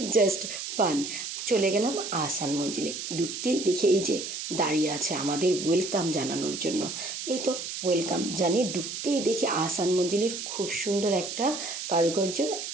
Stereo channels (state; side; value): noise; right; hiss, 6 dB below the sound